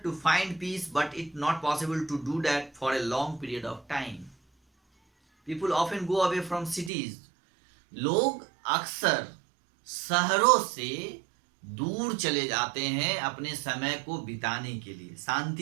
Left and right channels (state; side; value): drops out; left; at 6.9 s